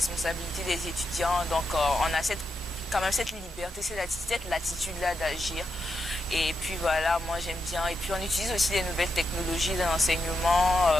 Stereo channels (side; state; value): both; normal; correlation 0.85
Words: des étudiants. Donc on a quand même cette liberté, cette latitude-là d'agir. Et puis voilà, moi j'aime bien. Et puis on utilise aussi les nouvelles technologies de l'enseignement.